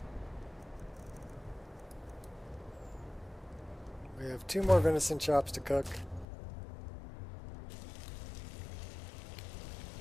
We have 2 more venison chops to cook.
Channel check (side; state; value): right; drops out; at 6.2 s